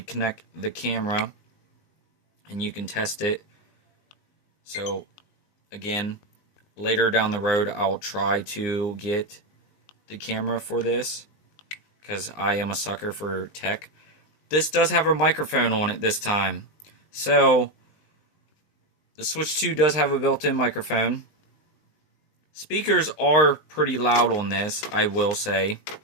the camera and you can test it. So again, later down the road I'll try to get the camera for this because I am a sucker for tech. This does have a microphone on it this time. So the Switch 2 does have a built-in microphone. Speakers are pretty loud on this, I will say.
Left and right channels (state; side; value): late; right; 19 ms